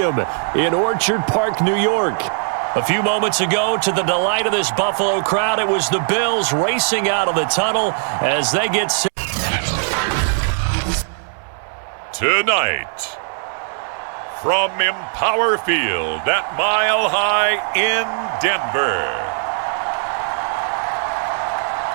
in Orchard Park, New York. A few moments ago, to the delight of this Buffalo crowd, it was the Bills racing out of the tunnel as they get set. Tonight, from Empower Field at Mile High in Denver,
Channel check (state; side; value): silent; left; digital silence